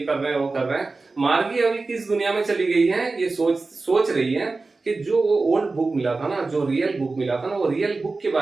रहे हैं, वो कर रहे हैं। मार्गी अभी किस दुनिया में चली गई है, ये सोच रही है कि जो वो ओल्ड बुक मिला था ना, जो रियल बुक मिला था ना, वो रियल बुक के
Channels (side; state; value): left; quieter; 3.7 dB